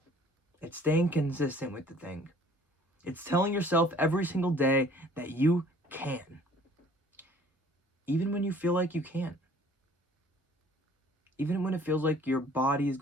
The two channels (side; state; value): both; normal; correlation 0.54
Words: It's staying consistent with the thing. It's telling yourself every single day that you can. Even when you feel like you can't. Even when it feels like your body is